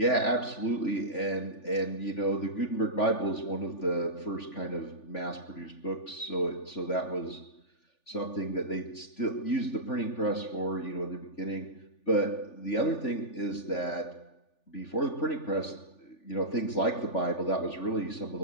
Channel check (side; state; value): right; late; 3.4 ms